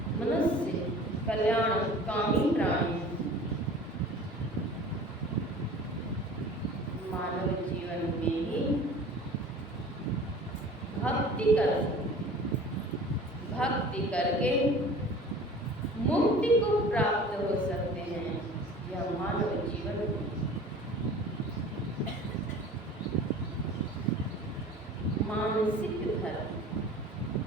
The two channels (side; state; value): both; normal; correlation 0.43